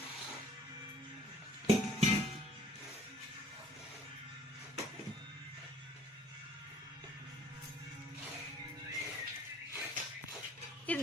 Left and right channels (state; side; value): normal; both; correlation 0.56